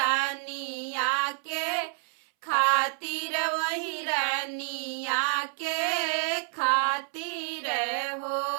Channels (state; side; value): silent; left; 59 dB below the other